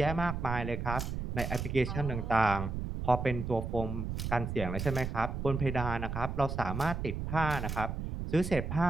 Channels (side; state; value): right; noise; rumble, 4 dB below the sound